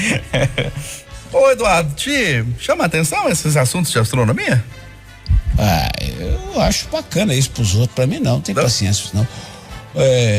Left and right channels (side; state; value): both; identical; correlation 1.00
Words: Ô, Eduardo, te chama a atenção esses assuntos de astronomia? Eu acho bacana isso pros outros, pra mim não tem paciência, não.